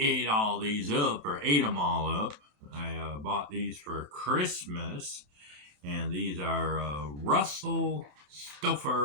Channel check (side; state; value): left; late; 27 ms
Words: all these up or ate them all up, I bought these for Christmas, and these are Russell